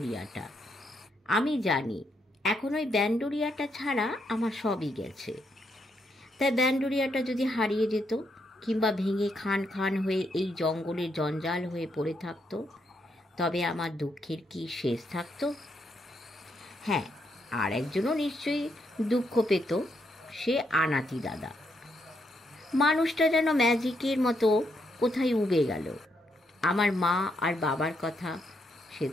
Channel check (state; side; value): normal; both; correlation 0.78